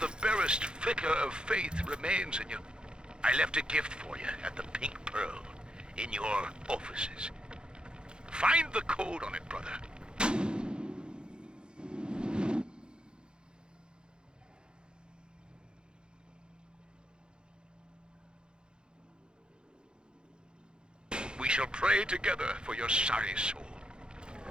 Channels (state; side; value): late; left; 0.049 ms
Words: barest flicker of faith remains in you. I left a gift for you at the Pink Pearl, in your offices. Find the code on it, brother. We shall pray together for your sorry soul.